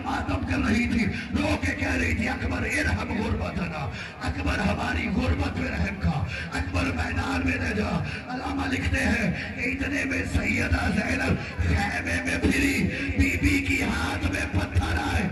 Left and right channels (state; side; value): identical; both; correlation 1.00